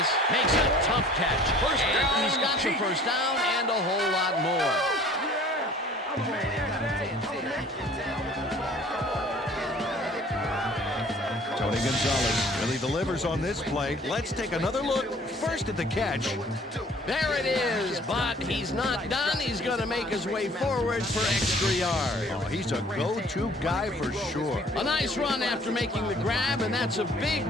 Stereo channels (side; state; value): both; normal; correlation 0.52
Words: makes a tough catch. First down. He's got the first down and a whole lot more. Gonzalez really delivers on this play. Let's take another look. First at the catch. There it is, but he's not done. He's going to make his way forward for extra yards. Oh, he's a go-to guy for sure. A nice run after making the grab, and that's a